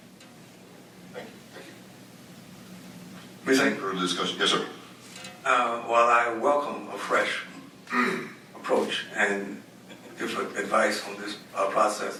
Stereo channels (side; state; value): both; identical; correlation 1.00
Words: Thank you. Any further discussion? Yes, sir. While I welcome a fresh approach and different advice on this process,